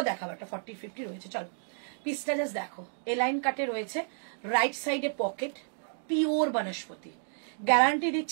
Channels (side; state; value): left; silent; digital silence